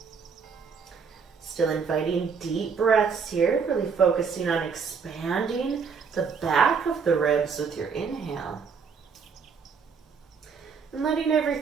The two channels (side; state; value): left; quieter; 5.8 dB